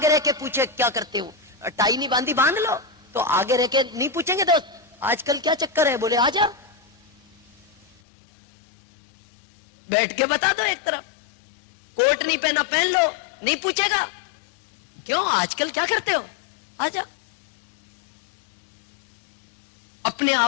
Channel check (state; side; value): drops out; right; at 7.9 s